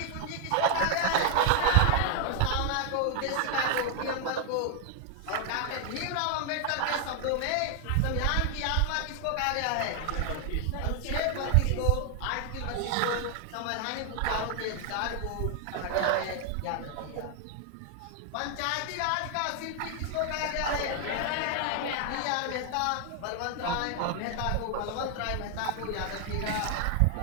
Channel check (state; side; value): different; both; correlation 0.00